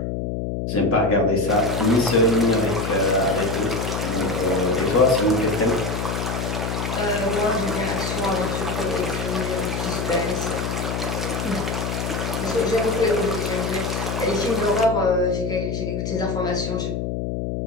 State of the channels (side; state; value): left; noise; hum, 2 dB below the sound